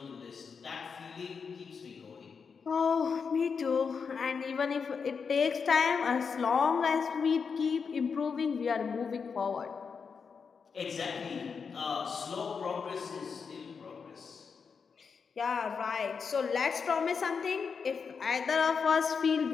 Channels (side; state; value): right; quieter; 5.8 dB